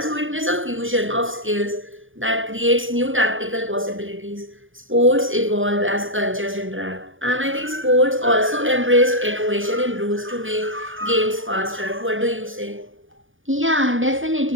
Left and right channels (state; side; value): late; left; 0.58 ms